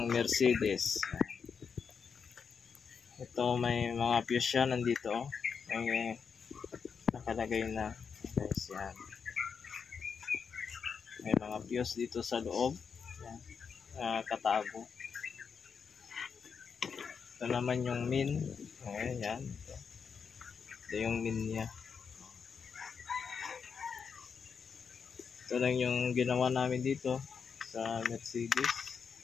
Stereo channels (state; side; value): quieter; right; 6.2 dB